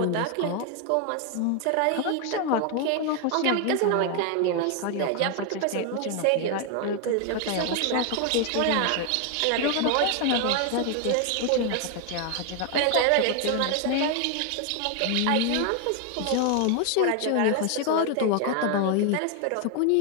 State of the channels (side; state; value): both; different; correlation 0.01